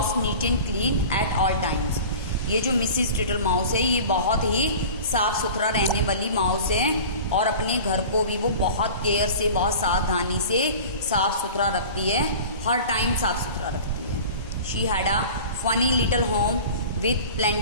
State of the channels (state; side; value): inverted; both; correlation -0.39